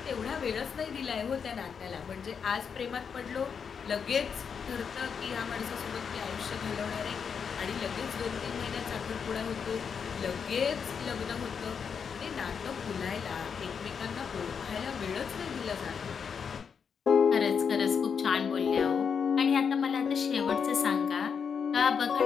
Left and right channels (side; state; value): right; quieter; 6.5 dB